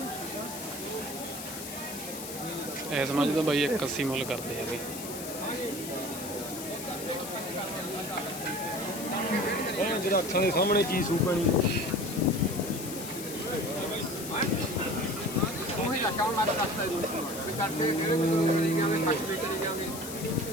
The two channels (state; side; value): noise; left; hiss, 9 dB below the sound